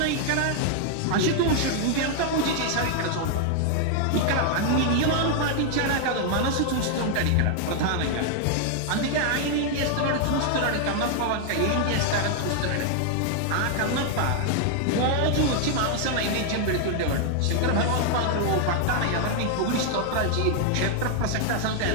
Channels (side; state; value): both; different; correlation 0.00